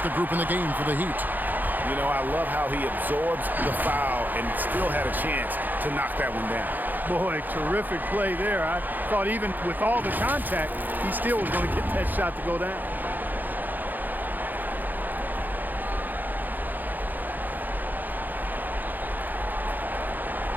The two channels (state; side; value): late; left; 0.086 ms